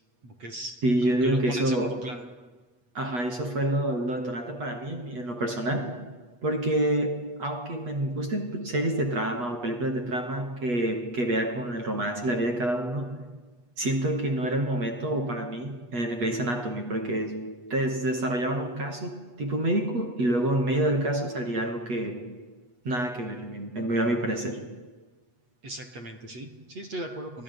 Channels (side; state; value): left; late; 8.3 ms